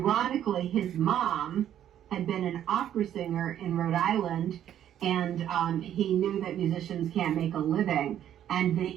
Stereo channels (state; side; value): quieter; left; 10.7 dB